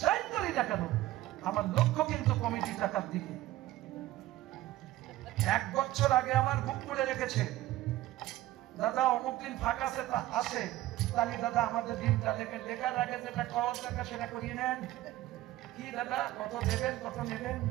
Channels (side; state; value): left; quieter; 15.7 dB